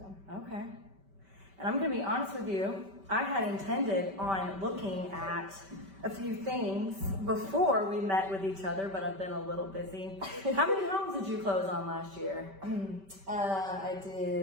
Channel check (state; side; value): late; left; 5.1 ms